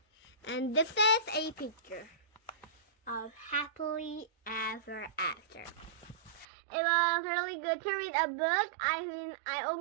And this is a picture of Happily Ever After. It was really good to read a book. I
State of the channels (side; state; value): left; drops out; at 6.5 s